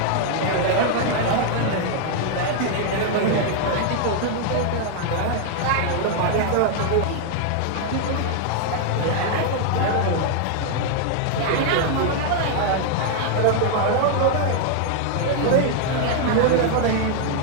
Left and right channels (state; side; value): different; both; correlation 0.00